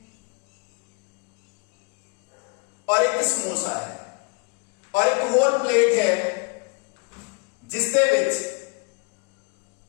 और एक समोसा है, और एक होल प्लेट है जिस दे विच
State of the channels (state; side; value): quieter; right; 32.8 dB